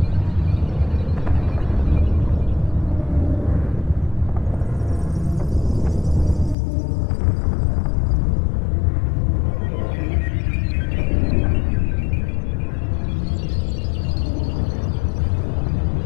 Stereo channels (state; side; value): drops out; right; at 6.6 s